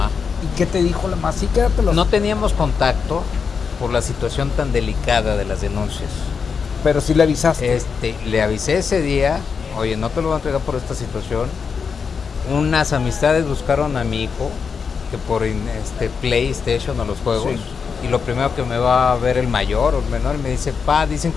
¿Y qué te dijo la mamá? Sí, quédatelos. No teníamos contacto por la situación tan delicada de las denuncias. Pero sí le avisaste. Le avisé ese día, oye, no te lo voy a entregar por esta situación. Unas amistades buscaron a mi hijo, que por PlayStation o los juegos, sí. Y lo primero que me va a ver el mayor o el menor, y me dice, pa, dicen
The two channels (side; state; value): right; quieter; 5.9 dB